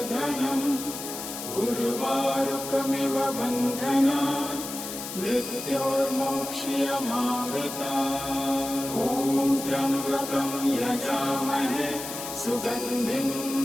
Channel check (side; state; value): left; noise; hiss, 8 dB below the sound